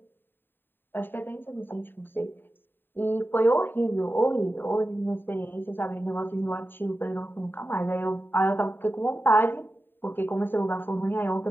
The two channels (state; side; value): late; right; 0.096 ms